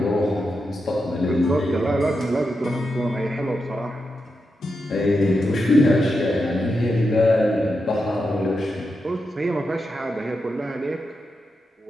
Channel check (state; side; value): normal; both; correlation 0.87